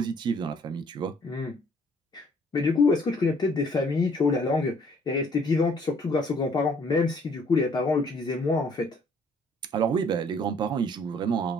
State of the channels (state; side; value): normal; both; correlation 0.61